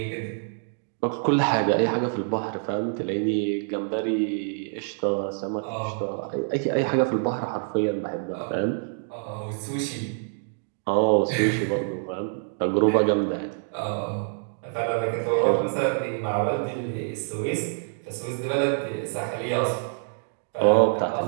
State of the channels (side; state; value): left; silent; 61 dB below the other